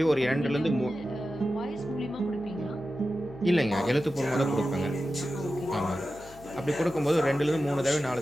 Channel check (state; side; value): noise; left; hum, 20 dB below the sound